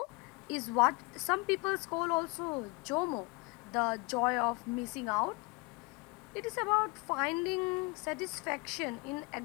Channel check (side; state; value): right; quieter; 27.9 dB